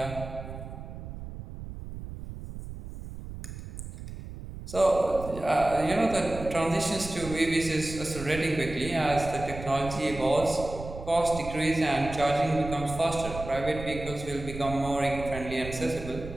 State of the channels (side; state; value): right; noise; rumble, 10 dB below the sound